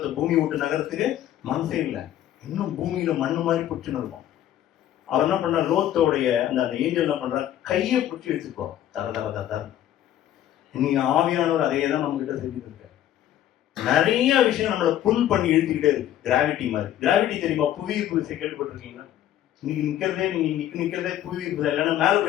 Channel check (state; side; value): quieter; right; 11.9 dB